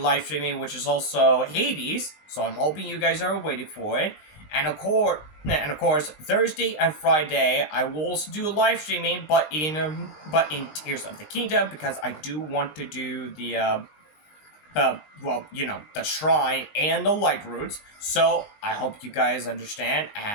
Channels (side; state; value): right; late; 19 ms